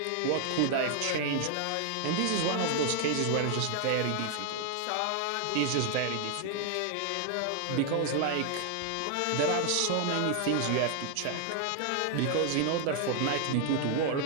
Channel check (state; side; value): different; both; correlation 0.00